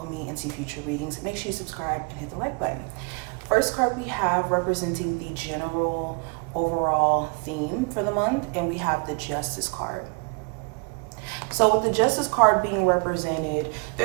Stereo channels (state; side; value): quieter; left; 33.8 dB